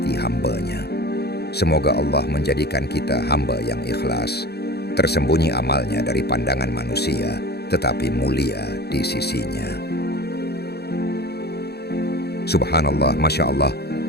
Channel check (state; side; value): late; right; 0.47 ms